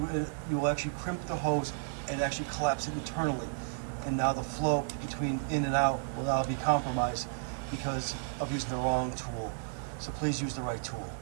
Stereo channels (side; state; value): left; silent; digital silence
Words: will actually crimp the hose and actually collapse it internally. And now the flow between in and out will now be compromised because of using the wrong tool. So please use the right tool.